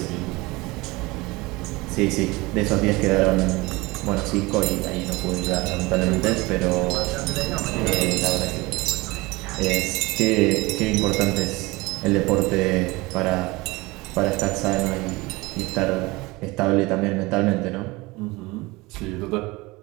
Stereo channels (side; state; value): left; quieter; 22.6 dB